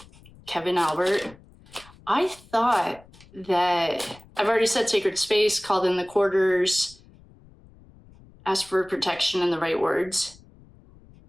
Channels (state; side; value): noise; left; rumble, 25 dB below the sound